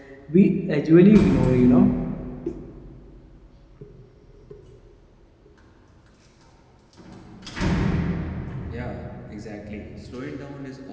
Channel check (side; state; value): both; identical; correlation 1.00